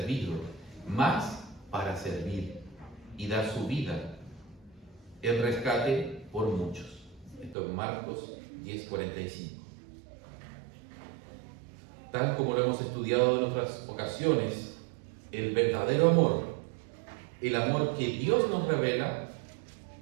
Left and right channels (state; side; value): drops out; left; at 7.6 s